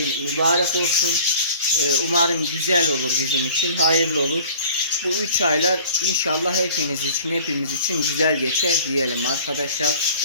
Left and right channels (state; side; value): inverted; both; correlation -0.47